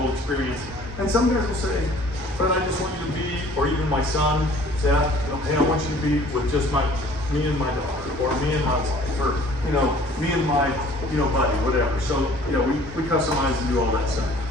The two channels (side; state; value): both; normal; correlation 0.52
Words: experience. And some guys will say, but I just want you to be, or even my son, Seth, hey, I want you to be with just me and my daughter, or me and my wife. for, you know, me and my, you know, buddy, whatever. So, you know, we customize and do all that stuff.